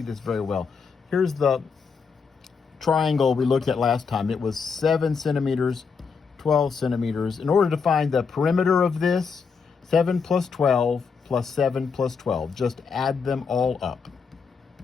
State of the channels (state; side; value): quieter; right; 5.5 dB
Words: this very well. Here's the triangle we looked at last time. It was 7 centimeters, 12 centimeters. In order to find the perimeter of this, 7 plus 12 plus 7 plus 12. Just add them all up,